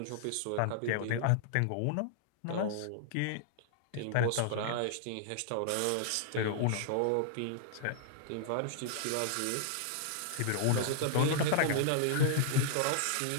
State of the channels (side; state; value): both; different; correlation -0.01